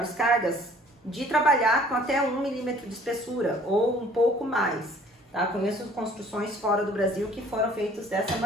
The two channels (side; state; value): both; normal; correlation 0.54